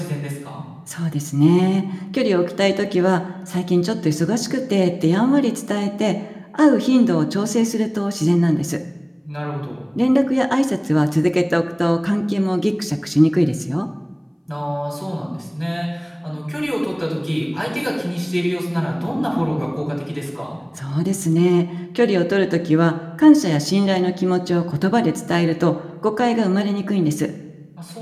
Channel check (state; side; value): identical; both; correlation 1.00